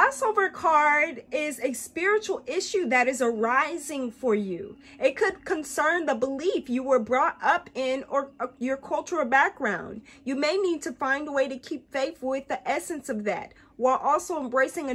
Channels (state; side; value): identical; both; correlation 1.00